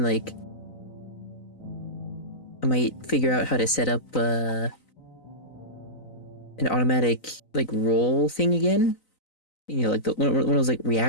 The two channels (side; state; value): right; late; 3.9 ms